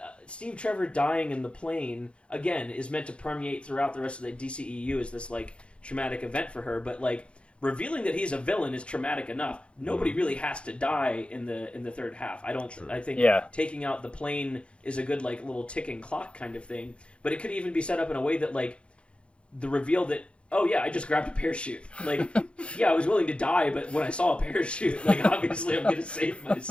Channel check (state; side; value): late; right; 0.058 ms